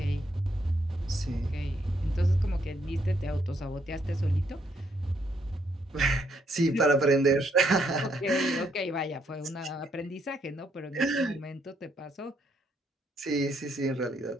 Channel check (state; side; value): normal; both; correlation 0.73